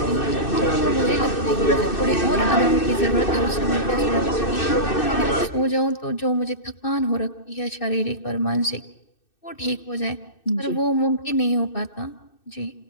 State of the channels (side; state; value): right; late; 2.6 ms